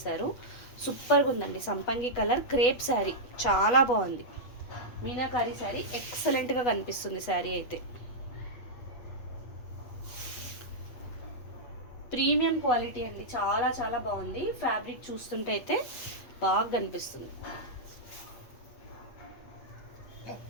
సూపర్గా ఉందండి. సంపంగి కలర్ క్రేప్ శారీ చాలా బాగుంది. మీనాకారి శారీ ఎక్సలెంట్గా కనిపిస్తుంది. శారీ అయితే ప్రీమియం క్వాలిటీ అండి. చాలా చాలా బాగుంది. ఫ్యాబ్రిక్ చూస్తుంటే అయితే బాగా కనిపిస్తుంది.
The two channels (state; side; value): late; right; 8.2 ms